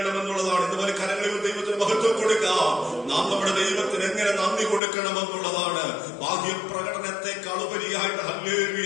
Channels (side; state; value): right; drops out; at 4.8 s